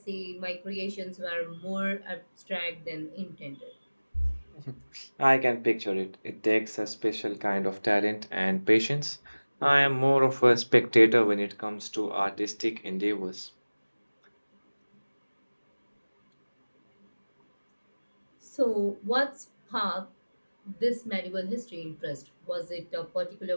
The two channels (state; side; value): inverted; both; correlation -1.00